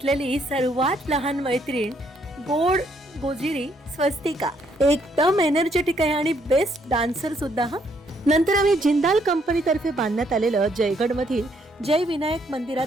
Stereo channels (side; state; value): both; normal; correlation 0.71